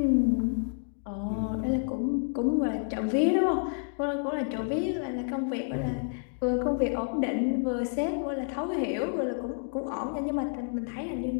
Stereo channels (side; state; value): right; silent; digital silence